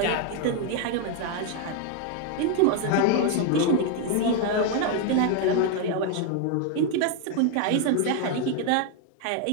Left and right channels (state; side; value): different; both; correlation 0.00